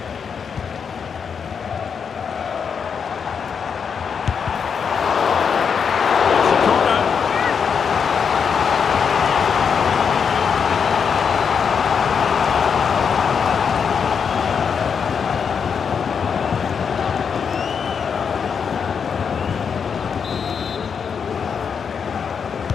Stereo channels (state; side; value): quieter; right; 6.5 dB